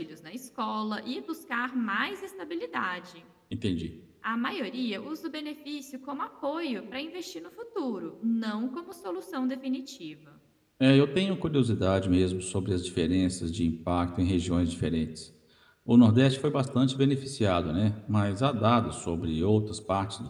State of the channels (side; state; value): both; identical; correlation 1.00